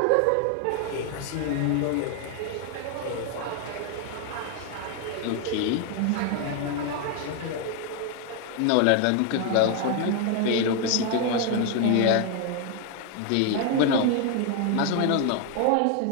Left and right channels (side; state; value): both; different; correlation 0.01